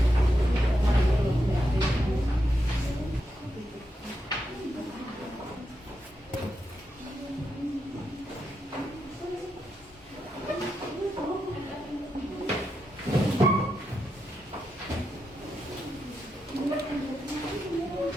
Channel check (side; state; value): both; normal; correlation 0.85